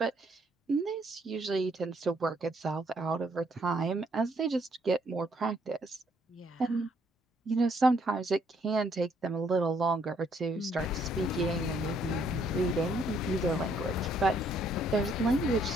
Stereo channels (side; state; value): both; normal; correlation 0.68